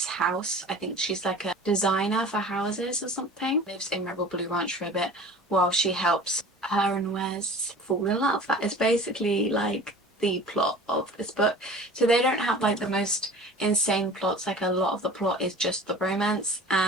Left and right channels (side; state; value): both; normal; correlation 0.42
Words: house. I think she's like a designer for houses or something. Lives in Rebel Blue Ranch for a bit while she helps her and Wes fall in love. That is basically like the plot of this book. So they don't have like the most insane plots, like a lot of the plot is just the romance,